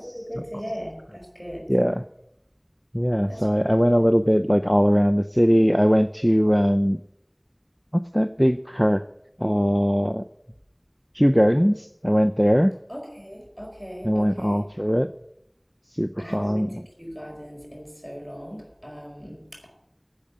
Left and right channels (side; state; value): both; identical; correlation 1.00